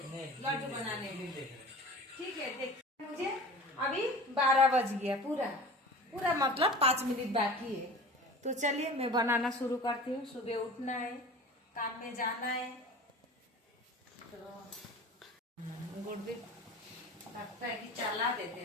लड्डू बनाने में? ठीक है, देखिए मुझे अभी 12 बज गया, पूरा मतलब 5 मिनट बाकी है। तो चलिए मैं बनाना शुरू करती हूँ। सुबह उठना है, काम में जाना है, तो गुड़ भी लगता है कि चला देते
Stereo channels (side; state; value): both; normal; correlation 0.38